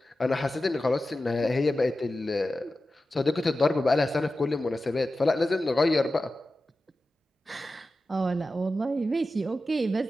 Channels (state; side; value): normal; both; correlation 0.93